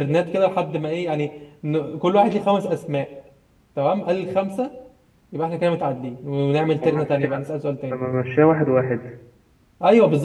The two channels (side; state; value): both; identical; correlation 1.00